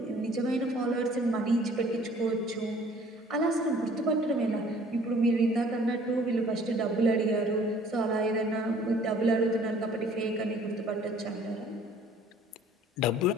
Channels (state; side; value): normal; both; correlation 0.54